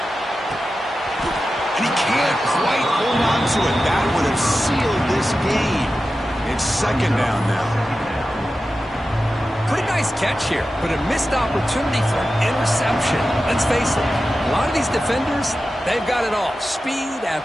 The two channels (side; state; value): both; normal; correlation 0.93